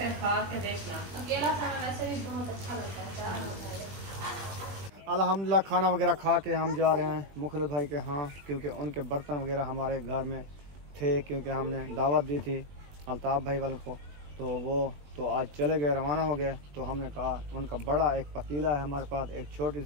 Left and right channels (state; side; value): late; left; 21 ms